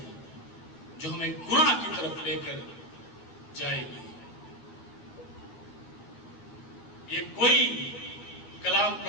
جو ہمیں گناہ کی طرف لے کر جائے گی۔ یہ کوئی کلام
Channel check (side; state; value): right; late; 12 ms